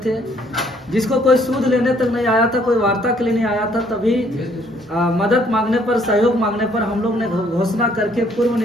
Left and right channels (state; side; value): normal; both; correlation 0.64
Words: थे, जिसको कोई सूद लेने तक नहीं आया था, कोई वार्ता के लिए नहीं आया था, तभी मदद मांगने पर, सहयोग मांगने पर हम लोग ने घोषणा करके पूर्व